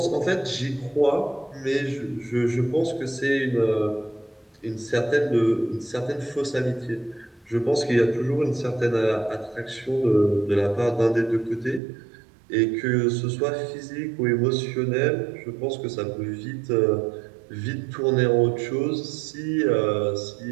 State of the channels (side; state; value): left; drops out; at 11.8 s